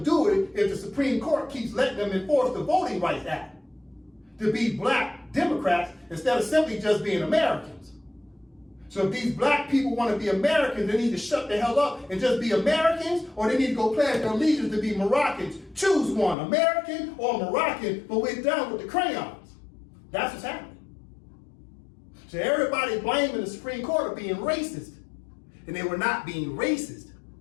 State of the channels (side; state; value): right; drops out; at 16.4 s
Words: do it if the Supreme Court keeps letting them enforce the Voting Rights Act to be black Democrats instead of simply just being Americans. So if these black people want to be Americans, they need to shut the hell up and just be Americans, or they need to go pledge their allegiance to be Moroccans. Choose one, American or Moroccan, but we're done with the crayons. That's what's happening. So everybody blaming the Supreme Court of being racist. And they were not being racist.